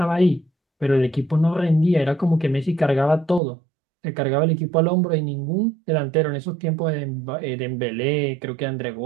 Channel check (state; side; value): drops out; left; at 3.4 s